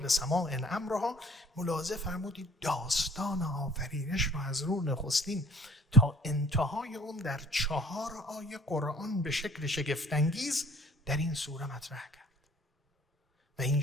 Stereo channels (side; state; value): both; normal; correlation 0.54